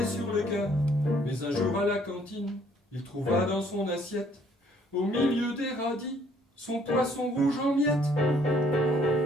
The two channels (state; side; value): normal; both; correlation 0.64